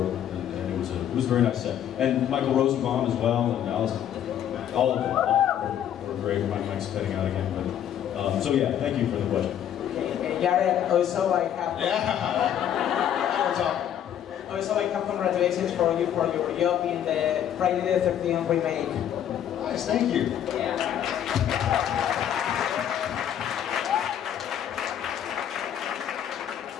with, and it was a very nice set. And Michael Rosenbaum as well, and Allison, all of them were great. Mike's heading out again, but so yeah, thank you for the question. Okay, Jared, also I have. Yeah. Also, I have congratulations for you for your job in the Friday the 13th remake. Nice, thank you. Yeah.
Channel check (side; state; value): right; quieter; 10.1 dB